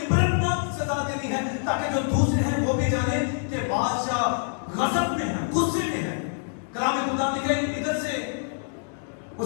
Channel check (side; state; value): right; silent; 61 dB below the other